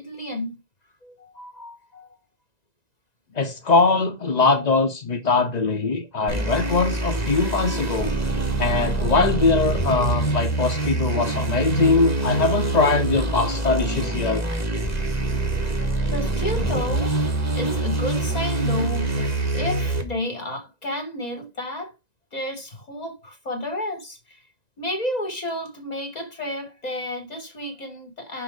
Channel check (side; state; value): right; late; 1.9 ms